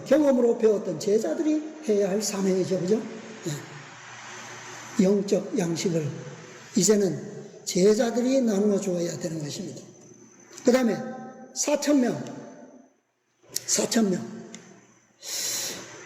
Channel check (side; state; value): both; identical; correlation 1.00